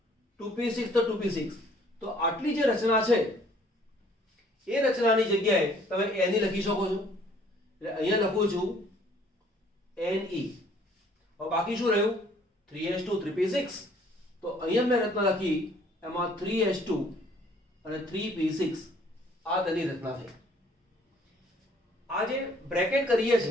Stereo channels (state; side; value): normal; both; correlation 0.59